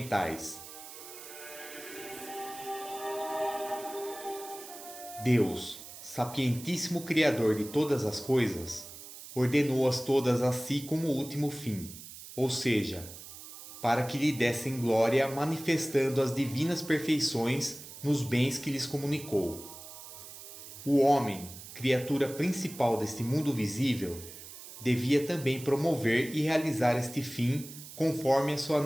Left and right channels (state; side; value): noise; right; hiss, 14 dB below the sound